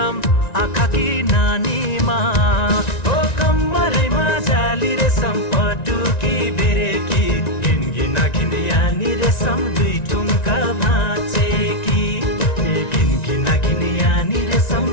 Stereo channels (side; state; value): right; late; 1.9 ms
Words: आँखा कि नानीमा ओ कम्मरैमा जाली रेशम पटुकी बेरेकी घिनघिना घिन यानी रेशम दुई ठुम्का भाँचेकी ए घिनघिना घिन यानी रेशम